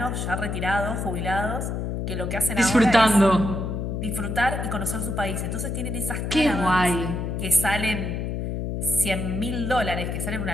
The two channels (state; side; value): noise; left; hum, 3 dB below the sound